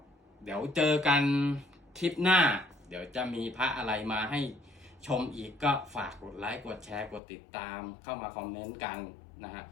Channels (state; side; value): drops out; right; at 7.2 s